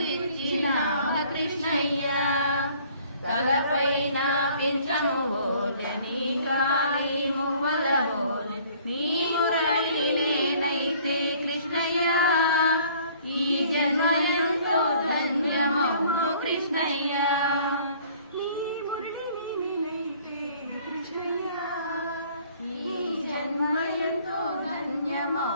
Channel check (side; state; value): both; inverted; correlation -0.56